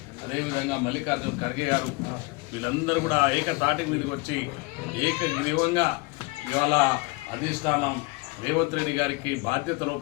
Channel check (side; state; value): right; quieter; 25.8 dB